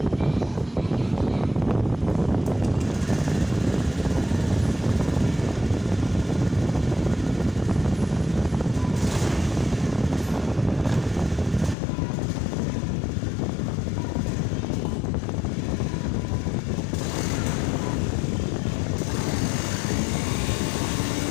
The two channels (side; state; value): right; drops out; at 11.8 s